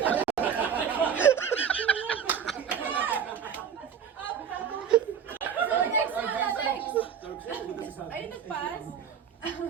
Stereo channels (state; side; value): quieter; left; 7.7 dB